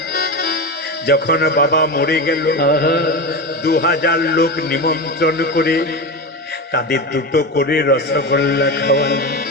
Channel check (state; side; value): normal; both; correlation 0.20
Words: যখন বাবা মরে গেল, 2000 লোক নিমন্ত্রণ করে তাদের দুটো করে রসগোল্লা খাওয়াল।